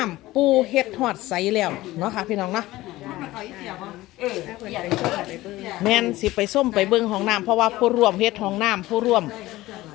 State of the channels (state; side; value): quieter; right; 17.5 dB